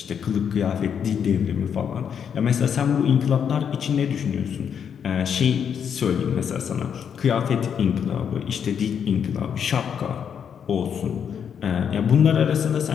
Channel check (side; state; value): right; quieter; 7.8 dB